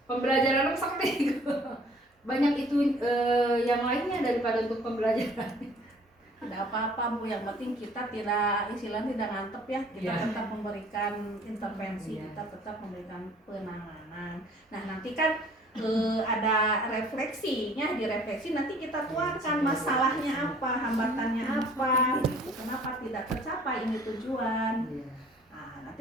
pembelajaran sakti banyak itu yang lainnya daripada untuk pembelajaran. Tidak apa-apa Bu, yang penting kita tidak istilahnya tidak ngantep ya, kita tetap memberikan intervensi, kita tetap memberikan penanganan. Nah nanti kan ada refleksinya, direfleksi nanti kita tuangkan masalahnya apa, hambatannya apa, gitu. Kenapa tidak tercapai ini tujuan. Nah,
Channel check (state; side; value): normal; both; correlation 0.54